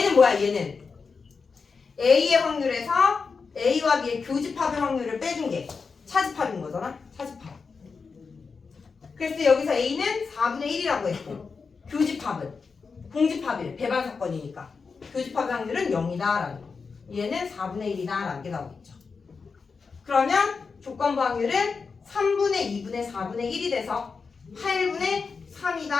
뭐야? 얘는 A의 확률에서 A와 B의 교집합의 확률을 빼준 게 차집합인 거잖아? 차집합. 그래서 여기서 A는 4분의 1이라고 했고 교집합은 공집합이래. 배반 사건이니까. 교집합의 확률은 0이다라는 거. 얘는 4분의 1이다라는 게 나오겠죠. 그러면 조건부 확률은 3분의 2분의 4분의 1이 돼서 8분의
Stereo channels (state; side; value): quieter; right; 5.0 dB